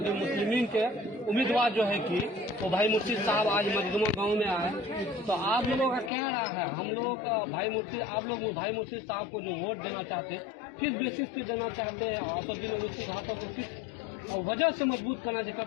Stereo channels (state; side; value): drops out; right; at 6.1 s